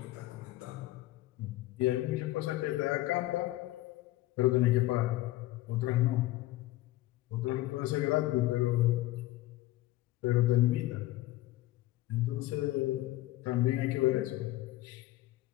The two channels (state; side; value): quieter; right; 16.7 dB